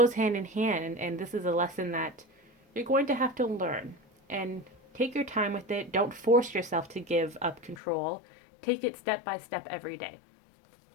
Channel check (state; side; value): drops out; right; at 7.8 s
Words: hand in hand, and this is a lesson that you're going to have to learn. And take your time with it. Don't force yourself to give up control. Take it step by step every day.